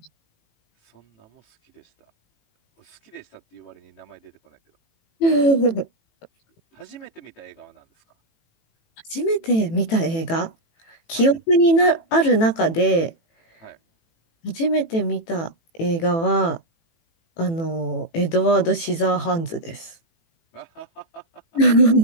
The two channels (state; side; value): late; right; 18 ms